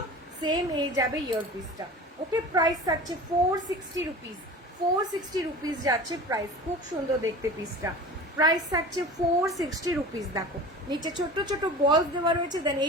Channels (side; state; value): both; normal; correlation 0.36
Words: সেম এই যাবে ইয়ার পিসটা। ওকে, প্রাইস থাকছে 460 রুপিস, 460 রুপিস যাচ্ছে প্রাইস। খুব সুন্দর দেখতে পিসটা, প্রাইস থাকছে 460 রুপিস। দেখো নিচে ছোট ছোট বলস দেওয়া রয়েছে, দেন